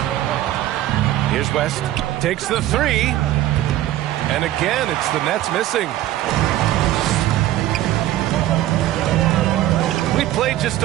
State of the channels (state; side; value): quieter; left; 14.1 dB